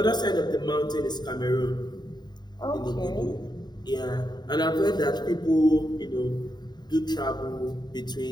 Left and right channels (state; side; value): late; right; 0.20 ms